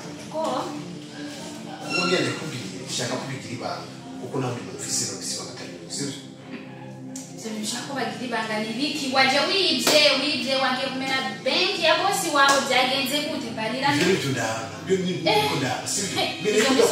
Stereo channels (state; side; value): identical; both; correlation 1.00